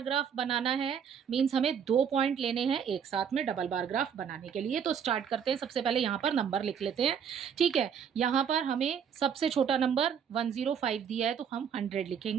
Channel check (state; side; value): quieter; left; 7.6 dB